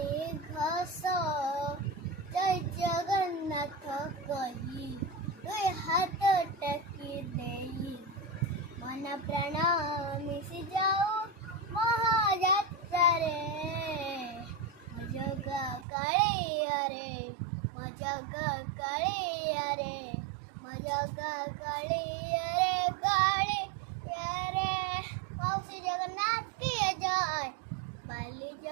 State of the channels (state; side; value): drops out; left; at 15.9 s